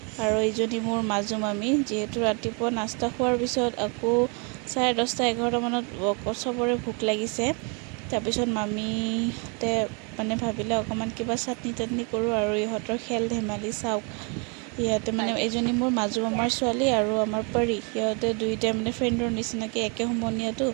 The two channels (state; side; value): quieter; left; 34.4 dB